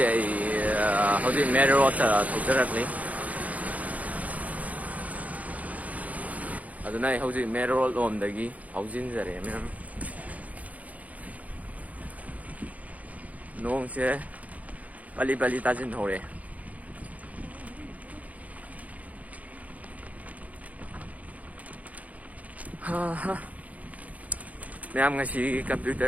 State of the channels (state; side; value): late; left; 0.072 ms